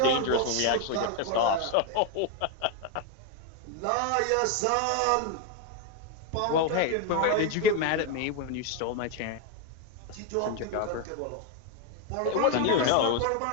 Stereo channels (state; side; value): different; both; correlation 0.01